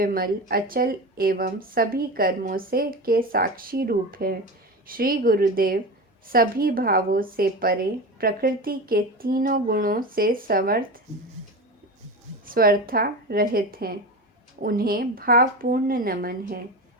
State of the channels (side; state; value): both; normal; correlation 0.26